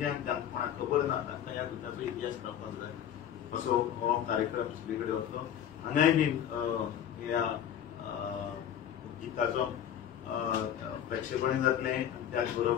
जांकां कोणाक खबर ना तांकां ह्या गिताचो इतिहास कळपाक जाय असो हो कार्यक्रम सगळे कडेन वतलो. हांगाय बीन ह्या गिताचो प्रेक्षेपण जातले त्याच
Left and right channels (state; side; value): quieter; right; 10.0 dB